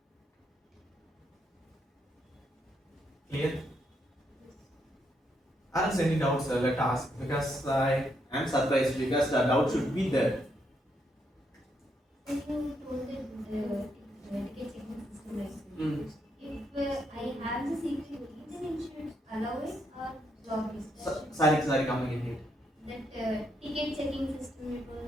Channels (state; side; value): normal; both; correlation 0.77